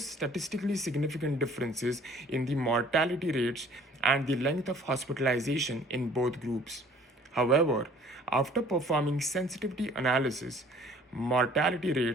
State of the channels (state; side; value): normal; both; correlation 0.54